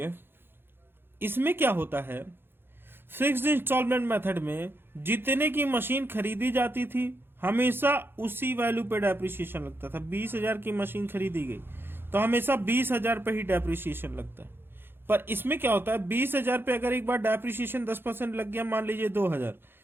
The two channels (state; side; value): late; left; 0.10 ms